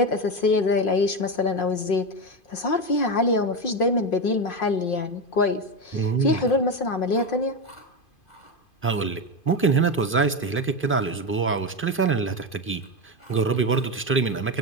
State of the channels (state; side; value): late; right; 2.5 ms